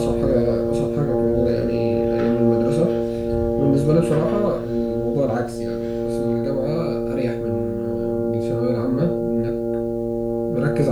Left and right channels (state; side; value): identical; both; correlation 1.00